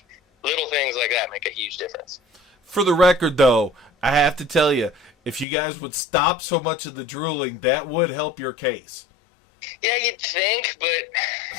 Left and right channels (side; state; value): right; drops out; at 5.5 s